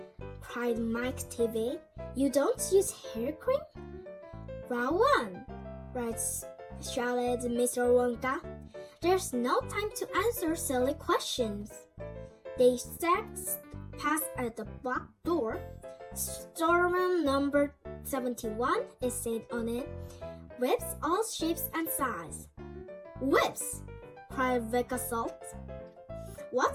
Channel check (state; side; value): identical; both; correlation 1.00